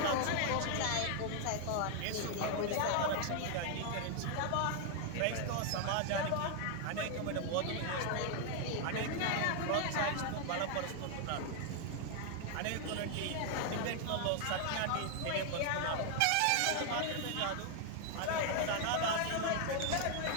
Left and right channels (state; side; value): different; both; correlation 0.00